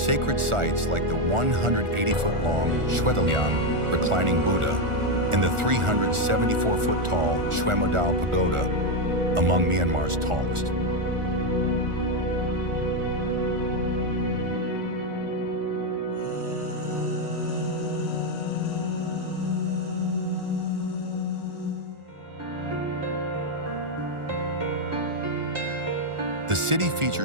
sites like the 180-foot-long Shwetaliang reclining Buddha and the 374-foot-tall Shwemodao Pagoda, among Myanmar's tallest. The city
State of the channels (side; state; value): left; late; 1.4 ms